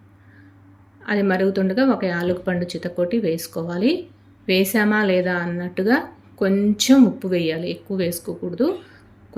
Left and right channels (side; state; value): both; identical; correlation 1.00